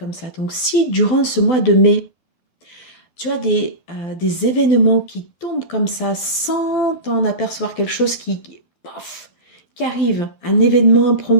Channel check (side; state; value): right; late; 12 ms